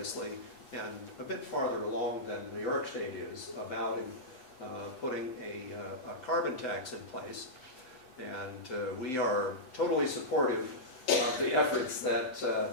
and a bit farther along than New York State is about putting a carbon tax in place. And we are totally supportive of the efforts that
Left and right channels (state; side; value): late; right; 7.9 ms